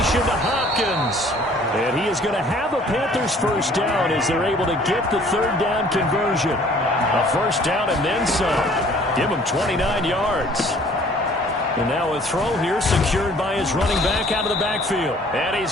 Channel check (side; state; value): both; normal; correlation 0.55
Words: to Hopkins. And he is going to have a Panthers first down as they're able to get the 3rd down conversion. A first down and then some. Give him 29 yards. And now a throw here secured by his running back out of the backfield. And he's